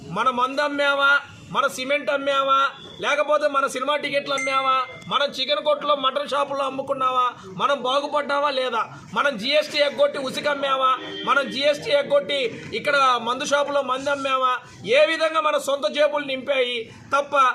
మన మందు అమ్మామా, మన సిమెంట్ అమ్మామా, లేకపోతే మన సినిమా టికెట్లు అమ్మామా, మనం చికెన్ కొట్టులో, మటన్ షాపుల్లో అమ్ముకున్నావా, మనం బాగుపడ్డావా లేదా, మనం జిఎస్టీ ఎగ్గొట్టి ఉసికి అమ్మామా, మనం జిఎస్టీ ఎగ్గొట్టి ఇక్కడ మందు షాపులో మంది అమ్మామా, ఏ విధంగా మన సొంత జేబులు నింపాయి తప్ప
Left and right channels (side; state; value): both; identical; correlation 1.00